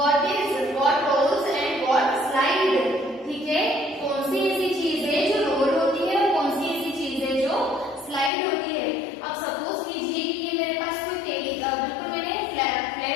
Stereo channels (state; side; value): drops out; right; at 8.3 s